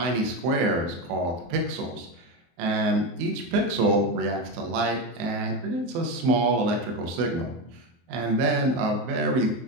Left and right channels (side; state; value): left; late; 23 ms